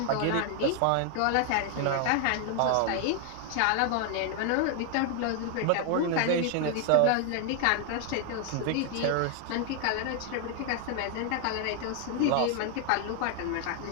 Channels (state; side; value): different; both; correlation 0.00